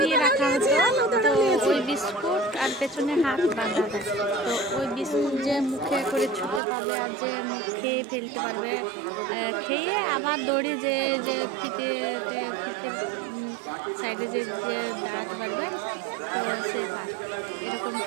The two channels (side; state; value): left; drops out; at 6.6 s